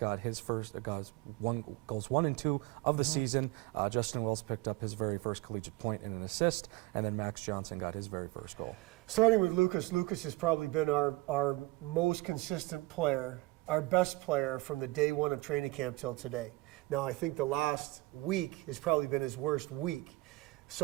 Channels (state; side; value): quieter; left; 21.3 dB